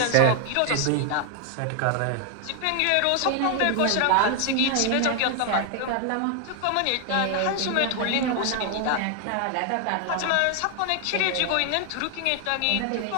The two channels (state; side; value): different; both; correlation 0.00